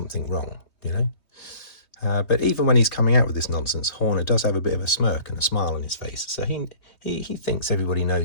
wrong, you know. But even when he's coming out with this nonsense, Horner does have a bit of a smirk and a smile on his face. So he thinks everybody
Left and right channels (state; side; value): late; right; 3.2 ms